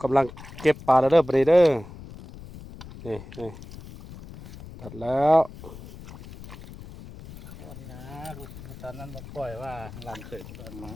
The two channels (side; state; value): left; noise; rumble, 15 dB below the sound